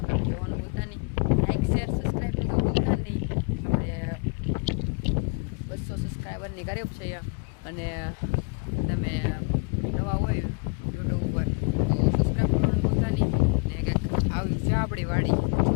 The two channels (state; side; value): quieter; right; 36.3 dB